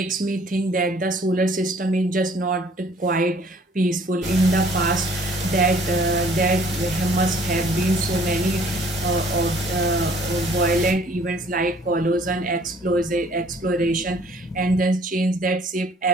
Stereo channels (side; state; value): both; normal; correlation 0.57